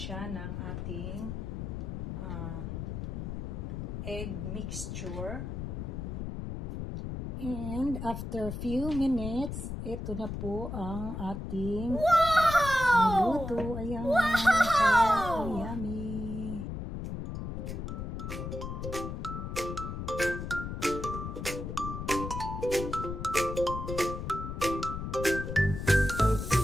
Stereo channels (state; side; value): noise; left; rumble, 5 dB below the sound